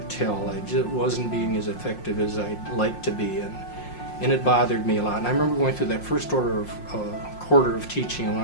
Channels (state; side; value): late; right; 5.6 ms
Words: tell I just wasn't being as effective as I'd like to be, and it bothered me a lot. And I remember going through that first quarter of teaching, and